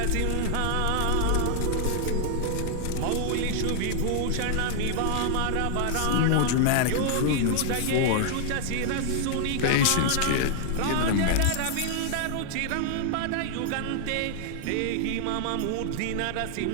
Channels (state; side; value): different; both; correlation 0.00